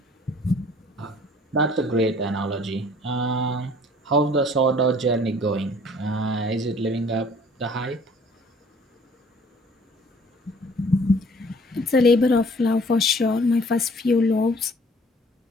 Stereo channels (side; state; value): both; normal; correlation 0.54